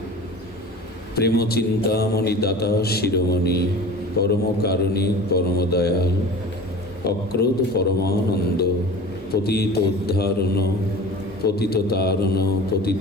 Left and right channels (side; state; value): both; normal; correlation 0.37